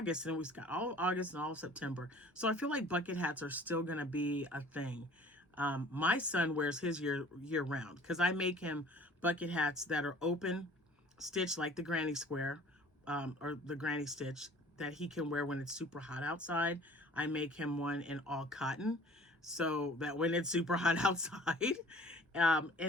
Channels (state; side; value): normal; both; correlation 0.50